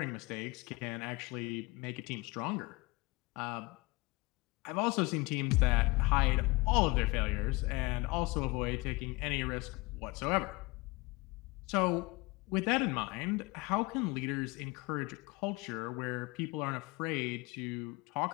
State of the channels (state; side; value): quieter; right; 24.1 dB